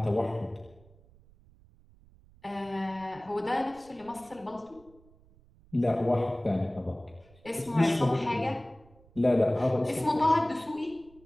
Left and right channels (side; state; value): right; noise; rumble, 27 dB below the sound